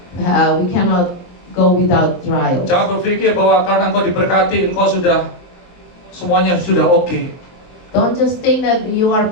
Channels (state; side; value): late; right; 23 ms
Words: go without trials. Jangan berpikir bahwa karena engkau diberkati, engkau sudah semuanya sudah oke. Don't just think that you are